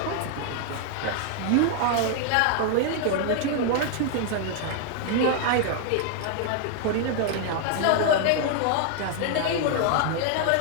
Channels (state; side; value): different; both; correlation 0.00